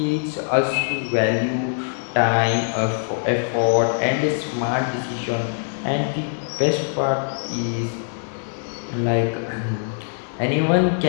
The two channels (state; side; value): silent; right; digital silence